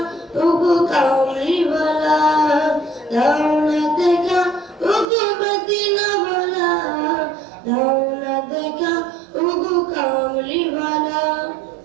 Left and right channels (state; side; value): drops out; left; at 5.1 s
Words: ওগো কামলিওয়ালা, দাও না দেখা ওগো মদিনাওয়ালা, দাও না দেখা ওগো কামলিওয়ালা।